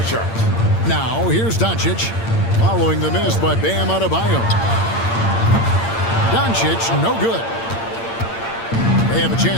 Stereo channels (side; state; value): right; late; 8.8 ms